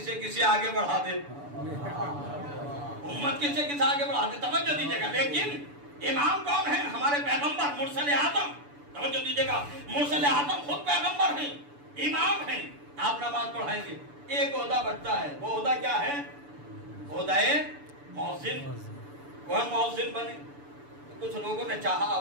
کسی آگے بڑھا دے، امت کسی آگے بڑھا دے، توجہ دیجیے گا۔ لیکن امام کون ہے؟ ہمارے پیغمبر مرسل اعظم، توجہ دیجیے گا، مرسل اعظم خود پیغمبر ہیں، امام ہیں، آپ نماز پڑھائیں گے۔ ایک عہدہ بچتا ہے، وہ عہدہ کیا ہے؟ عہدہ مؤذن، وہ مؤذن بنے۔ کچھ لوگوں نے چاہا،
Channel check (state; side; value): late; left; 6.9 ms